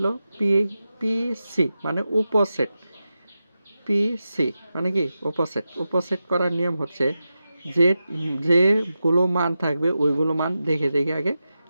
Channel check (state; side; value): inverted; both; correlation -0.91